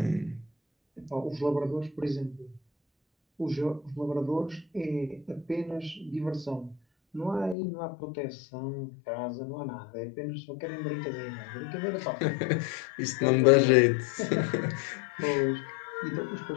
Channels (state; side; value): drops out; right; at 7.6 s